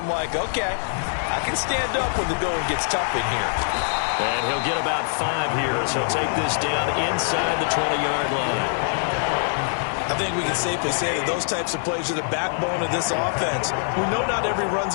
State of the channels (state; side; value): silent; right; digital silence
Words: like, okay, I can stand up when the going gets tough in here. And he'll get about 5 here as he'll take this down inside the 20-yard line. I think we can safely say that those types of plays are the backbone of this offense. We know not every